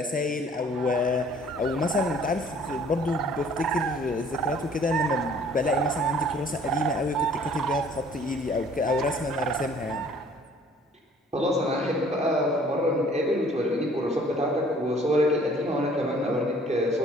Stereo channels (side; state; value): both; normal; correlation 0.55